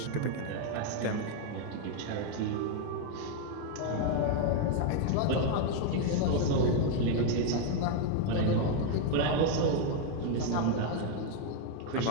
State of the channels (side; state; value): both; different; correlation 0.01